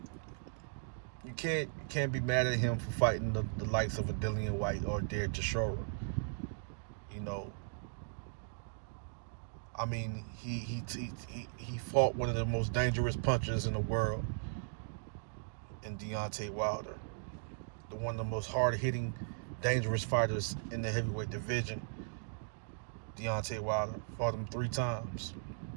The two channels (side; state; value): left; silent; digital silence